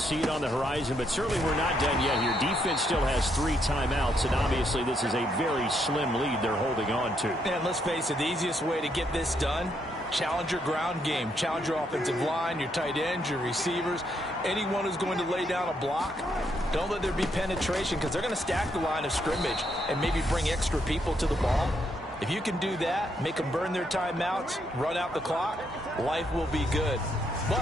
it on the horizon, but certainly we're not done yet here. Defense still has 3 timeouts, and obviously this is a very slim lead they're holding on to. And let's face it, the easiest way to get this done, challenge your ground game. Challenge your offensive line, your tight ends, your receivers, anyone who's going to lay down a block. Don't let there be penetration because they're going to stack the line of scrimmage and maybe bring extra people to the ball. If you can do that, make them burn their timeouts, run out the clock, life will be good.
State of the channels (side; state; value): both; normal; correlation 0.76